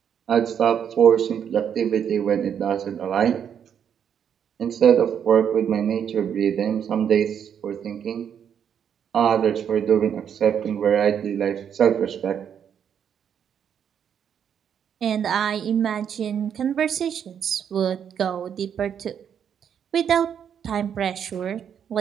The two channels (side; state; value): left; quieter; 8.3 dB